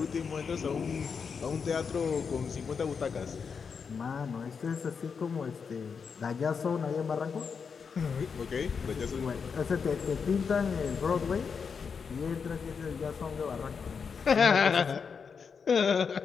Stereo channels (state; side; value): quieter; right; 5.9 dB